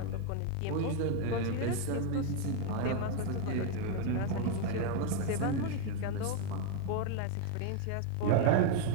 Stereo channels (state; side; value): different; both; correlation 0.01